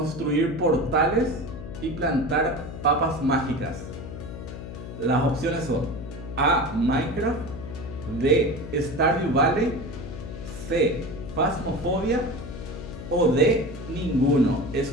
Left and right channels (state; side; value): noise; left; hum, 10 dB below the sound